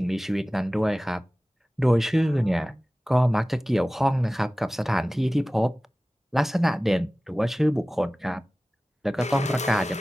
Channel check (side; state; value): both; normal; correlation 0.97